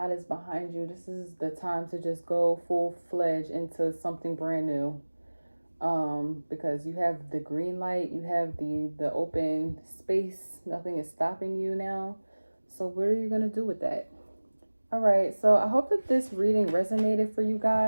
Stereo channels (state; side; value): inverted; both; correlation -1.00